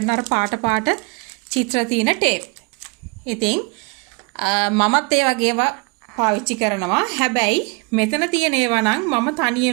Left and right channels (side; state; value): left; quieter; 29.9 dB